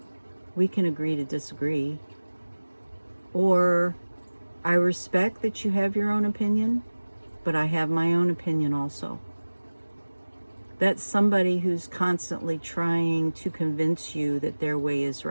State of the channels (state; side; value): inverted; both; correlation -1.00